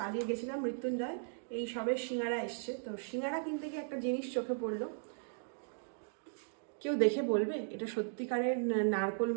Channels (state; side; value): silent; left; digital silence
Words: আজকে গেছিলাম মৃত্যুঞ্জয়, এই সবে সিঙ্গারা এসছে। তো সিঙ্গারা কিনতে গিয়ে একটা জিনিস চোখে পড়লো, কেউ দেখে বলবে এটা সত্যিকারের নারকোল